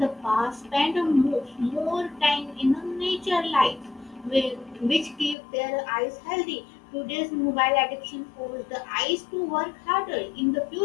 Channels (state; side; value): drops out; right; at 5.4 s